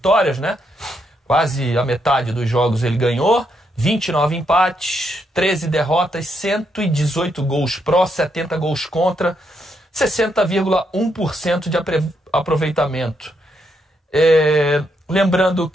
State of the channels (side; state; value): both; normal; correlation 0.78